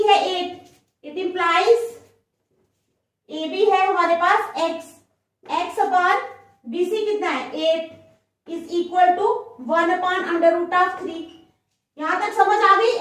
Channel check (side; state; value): both; identical; correlation 1.00